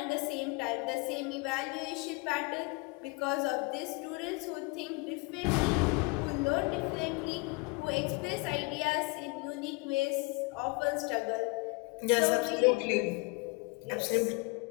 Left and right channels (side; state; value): right; quieter; 28.1 dB